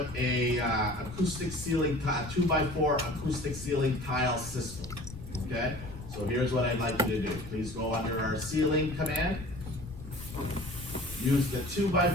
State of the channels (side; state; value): left; noise; rumble, 13 dB below the sound